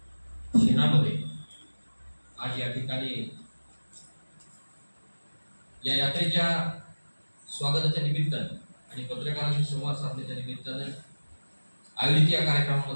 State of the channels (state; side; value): inverted; both; correlation -1.00